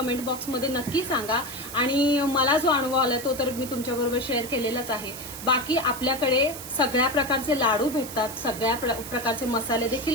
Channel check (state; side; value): noise; right; hiss, 11 dB below the sound